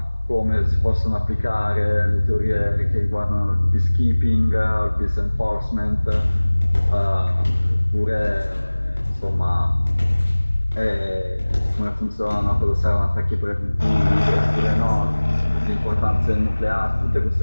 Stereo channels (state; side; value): inverted; both; correlation -1.00